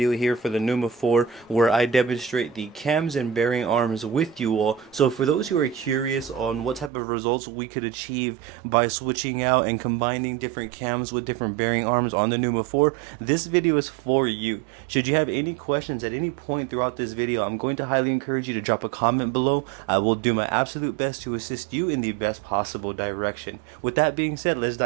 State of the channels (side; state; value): left; drops out; at 6.9 s